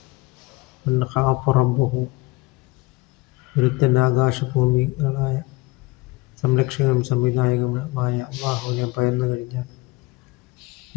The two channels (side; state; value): right; quieter; 22.2 dB